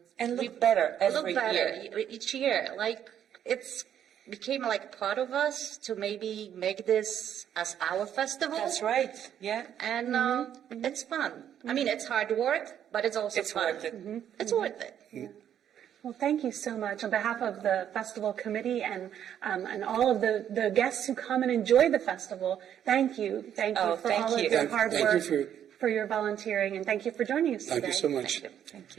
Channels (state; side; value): quieter; left; 9.8 dB